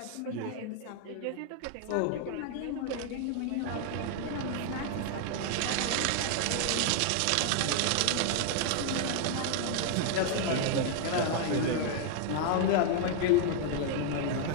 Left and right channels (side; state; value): both; different; correlation 0.00